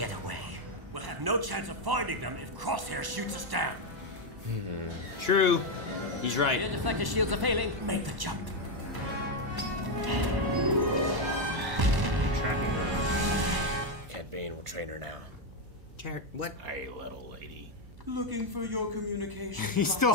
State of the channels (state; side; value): late; left; 1.0 ms